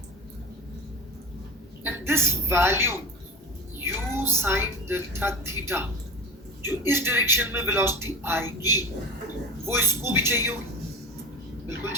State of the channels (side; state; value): both; normal; correlation 0.31